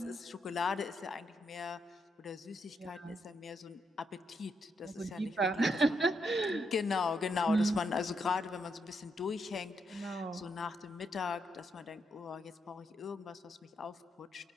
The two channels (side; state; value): both; normal; correlation 0.79